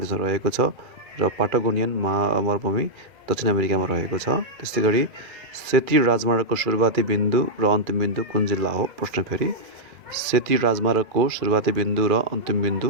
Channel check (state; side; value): late; left; 2.4 ms